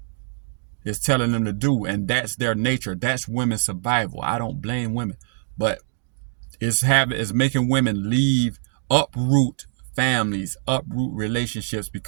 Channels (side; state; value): left; silent; digital silence